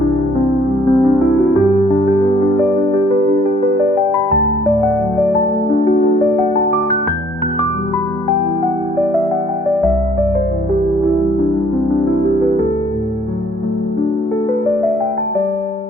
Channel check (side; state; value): both; normal; correlation 0.61